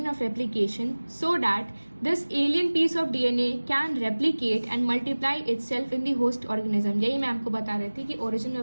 of replication so that this alien piece of DNA can replicate and multiply itself in the host organism। यही मैं आपको बता रही थी कि origin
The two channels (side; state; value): both; inverted; correlation -1.00